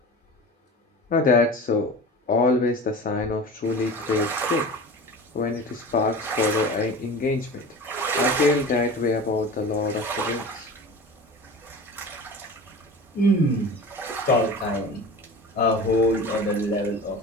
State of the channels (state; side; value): normal; both; correlation 0.35